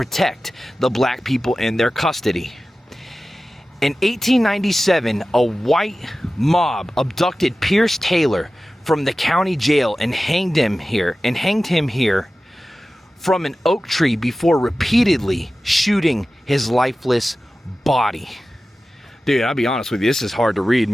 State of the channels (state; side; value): normal; both; correlation 0.95